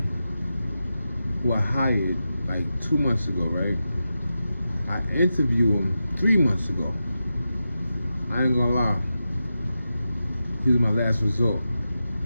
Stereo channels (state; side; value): inverted; both; correlation -0.90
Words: who I hired like 2 months ago, right? I interviewed him 3 months ago. I ain't gonna lie. He was my last resort.